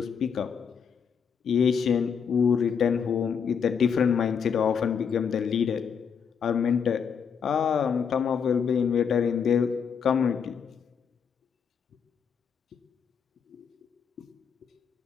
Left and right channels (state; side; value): quieter; right; 6.9 dB